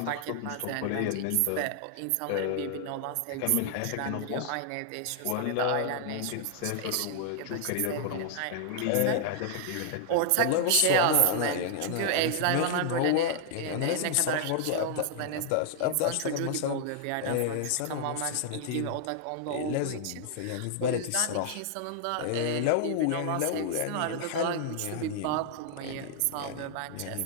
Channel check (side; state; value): both; different; correlation -0.01